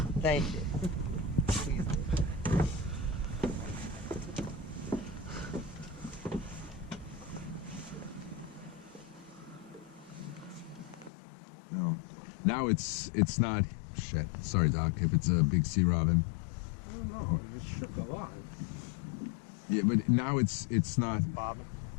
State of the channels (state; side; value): drops out; right; at 11.1 s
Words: Thank you. No. Now it's not. Shit. Sorry, Doc. If it's a big sea robin. I don't know. It shook a lot. Yeah, but now it's not. Bobbing.